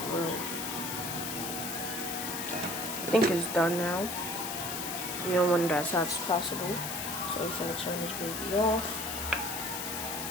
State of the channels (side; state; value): left; noise; hiss, 4 dB below the sound